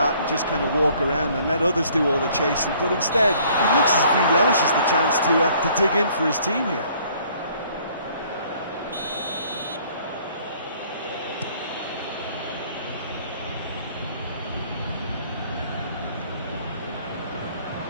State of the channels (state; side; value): inverted; both; correlation -0.59